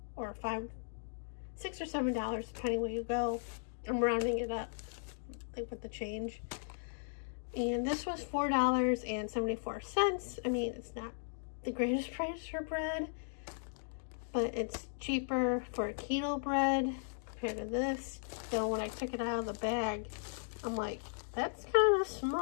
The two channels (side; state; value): right; silent; digital silence